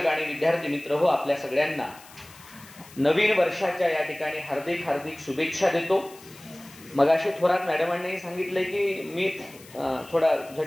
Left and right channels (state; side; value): noise; left; hiss, 21 dB below the sound